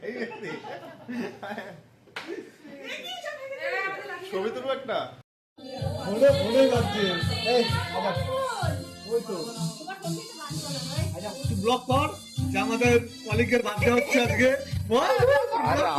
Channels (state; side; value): identical; both; correlation 1.00